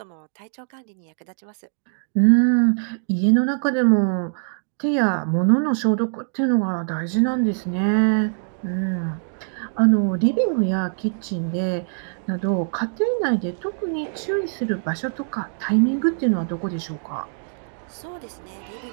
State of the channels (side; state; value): left; silent; digital silence